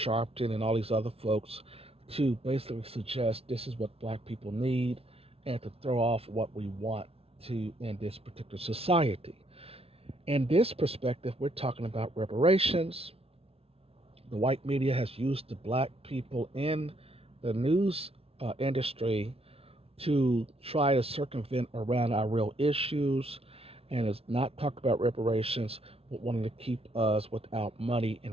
and all these other folks, to basically suggest this is what black people need and to throw off what we want to in this particular society. In this perspective, we're talking about reparations. The white media has used the black people in the news industry to try to circumvent around our real issues and is not talk about reparations, but wanting to keep us without money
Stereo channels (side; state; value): left; late; 0.28 ms